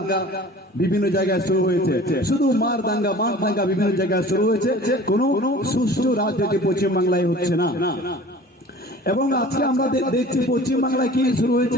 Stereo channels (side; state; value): both; normal; correlation 0.44